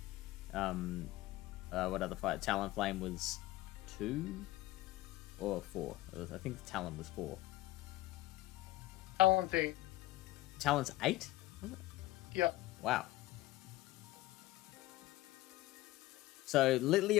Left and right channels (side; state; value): right; quieter; 17.9 dB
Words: What other fire? Talonflame was 2 or 4. I think Talon was 4. Talon's 8. Talon's 8? Was it? Yep. Wow. So